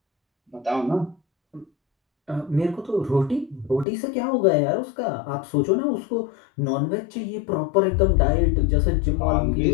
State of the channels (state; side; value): drops out; right; at 3.9 s